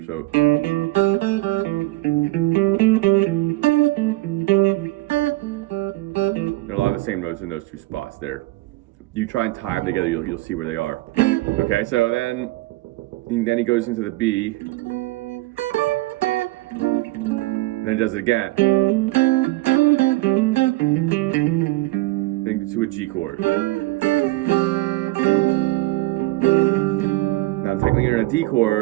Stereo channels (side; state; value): left; quieter; 19.8 dB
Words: so. There are a lot of the same notes in those two spots there. You try and tie them together, you'll see where they are. Okay, so then he goes into the B. And then he does it again. Then to a G chord. Now technically you're in a D